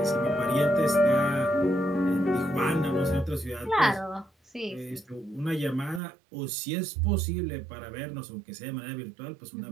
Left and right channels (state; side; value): drops out; left; at 6.0 s